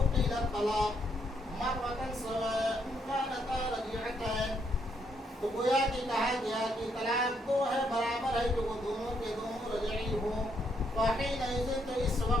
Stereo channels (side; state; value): both; normal; correlation 0.74